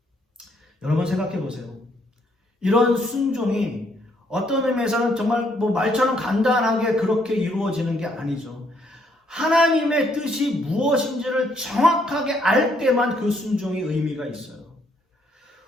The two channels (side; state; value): both; normal; correlation 0.70